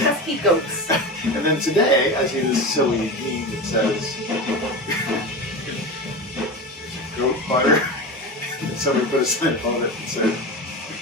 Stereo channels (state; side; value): normal; both; correlation 0.25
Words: goats. And then today, I see this silly meme that says, "Goat butter." And somebody put a sign on it and said,